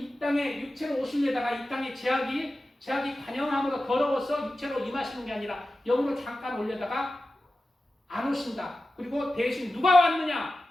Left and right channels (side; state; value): both; normal; correlation 0.94